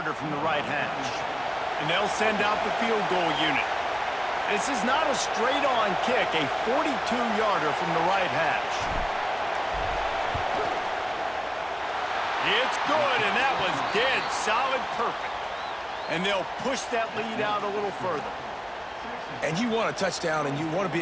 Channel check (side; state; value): both; identical; correlation 1.00